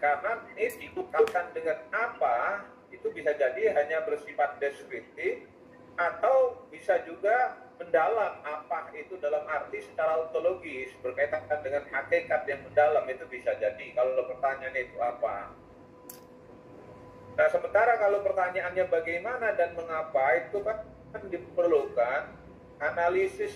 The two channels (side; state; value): both; identical; correlation 1.00